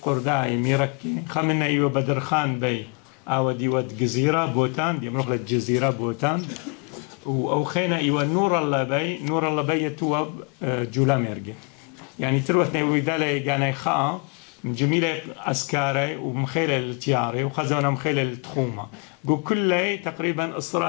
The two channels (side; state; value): right; quieter; 34.9 dB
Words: قرداي ميركي خمنا أيوة بدر خان بي أو دي ود جزيرة بوتان دي مغلة جزيرة بوتان أو خينا أيوة نور الله بي يتوب جولام يرجع يعني تروح نيوي دالي جاني خاء جميلة عسكري ومخيلة التياري وخزونا مخيلة التخومة جو كله تقريبا